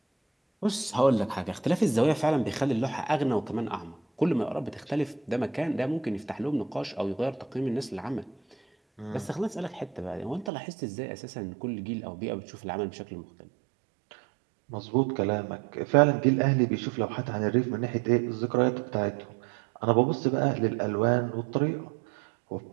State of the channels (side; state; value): left; drops out; at 10.5 s